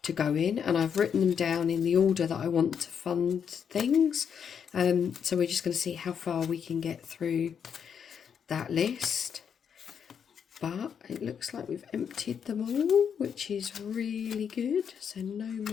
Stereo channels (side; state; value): right; quieter; 7.5 dB